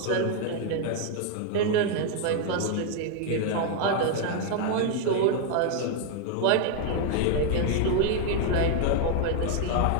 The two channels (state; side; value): different; both; correlation 0.00